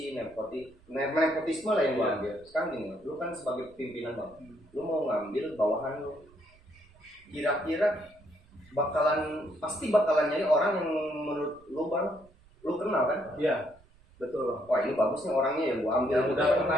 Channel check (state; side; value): noise; right; rumble, 28 dB below the sound